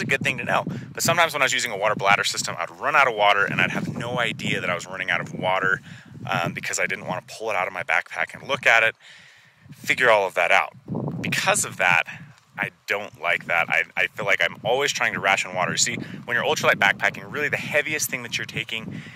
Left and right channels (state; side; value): identical; both; correlation 1.00